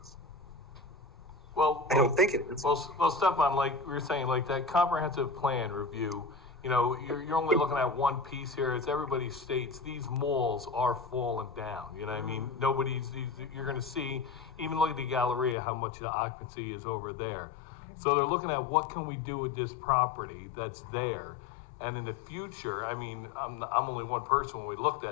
Well, I don't think it is. Well, Stefan, like we were saying, like that comprehensive plan review, you're only looking at one piece here. As everybody states, these malls are falling down. You know what I mean? You're going to see, even look at the Galleria, how much the occupancy is over there. So they're looking at what can we do with this property that's there. And in the future, I mean, I'm only one person when we looked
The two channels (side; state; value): right; drops out; at 15.6 s